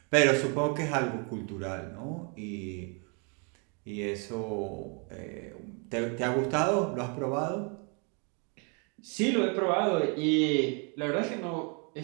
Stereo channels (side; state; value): left; quieter; 35.6 dB